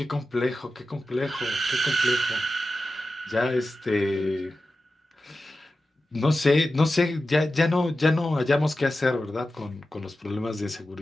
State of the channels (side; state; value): both; normal; correlation 0.93